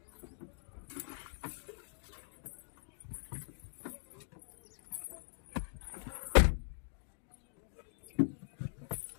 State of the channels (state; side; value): silent; right; digital silence